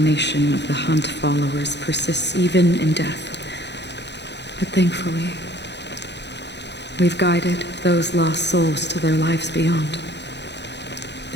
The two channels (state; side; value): late; right; 0.50 ms